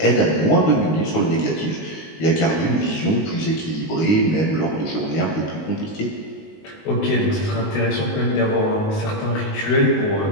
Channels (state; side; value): late; right; 19 ms